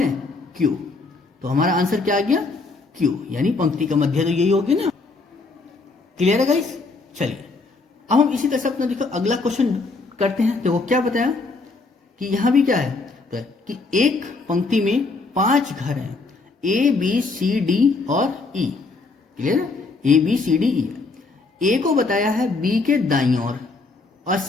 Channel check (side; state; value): right; quieter; 3.8 dB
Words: क्यू। तो हमारा आंसर क्या आ गया? क्यू, यानी पंक्ति का मध्य तो यही होगी ना। क्लियर है गाइस? चलिए अब हम इसी तरह से अपना देखो अगला क्वेश्चन करते हैं। देखो क्या बताया कि यहां भी क्या है तो कि एक पंक्ति में 5 घर हैं, ए बी सी डी और ई। क्लियर है? ए बी सी डी ई। ए को बताया है बी के दाईं ओर और